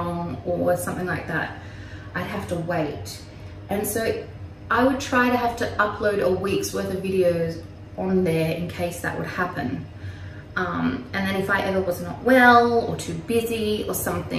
or something like that, I'd have to wait. And so I would try to have to upload a week's worth of videos on there in case that would happen. And then if I ever was not well or too busy or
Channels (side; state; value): both; identical; correlation 1.00